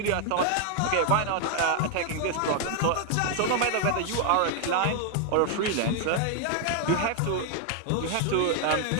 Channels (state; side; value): different; both; correlation 0.00